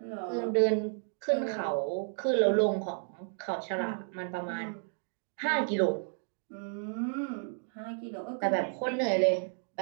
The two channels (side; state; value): left; silent; digital silence